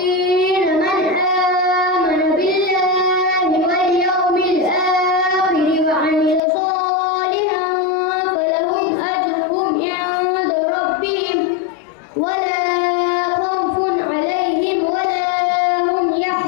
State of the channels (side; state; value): right; drops out; at 6.4 s